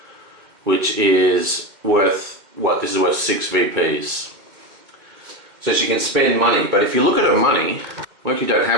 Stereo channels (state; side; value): late; left; 2.0 ms